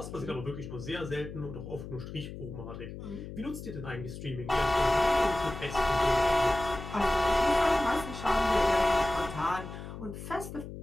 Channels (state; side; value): noise; left; hum, 10 dB below the sound